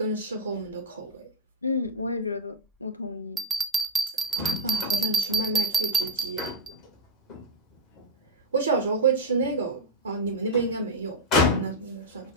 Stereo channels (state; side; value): normal; both; correlation 0.02